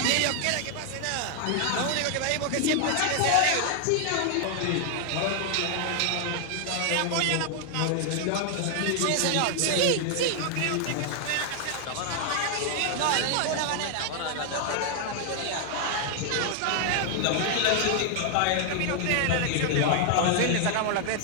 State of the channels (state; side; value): different; both; correlation 0.00